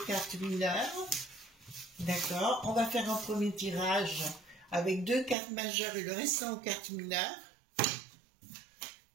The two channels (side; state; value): left; drops out; at 5.4 s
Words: cartes mineures. D'accord, on va faire un premier tirage avec 2 cartes majeures et le restant aux cartes mineures.